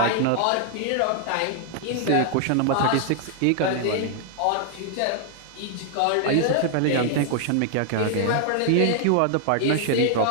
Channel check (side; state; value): both; different; correlation 0.00